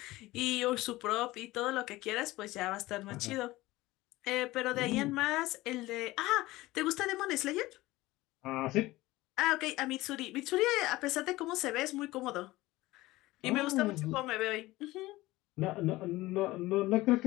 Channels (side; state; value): right; quieter; 18.7 dB